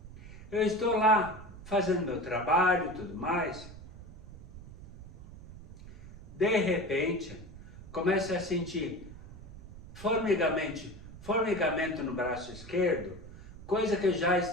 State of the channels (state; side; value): noise; right; rumble, 16 dB below the sound